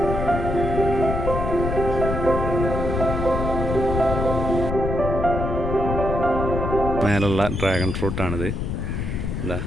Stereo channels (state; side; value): noise; left; rumble, 2 dB below the sound